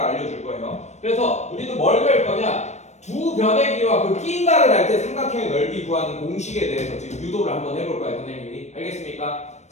알려줄 거예요. 그래서 우리도 뭘 배울 거냐? 두 변의 길이와 그 끼인각을 할 때 삼각형의 넓이 구하는 공식에 대해서 지금 유도를 한번 해볼 거예요, 선생님이. 알겠습니까?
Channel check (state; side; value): late; right; 0.33 ms